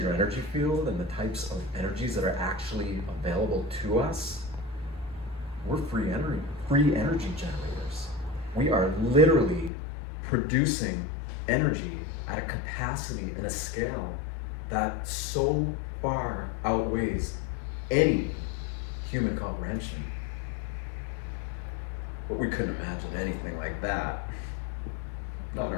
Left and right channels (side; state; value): right; drops out; at 9.7 s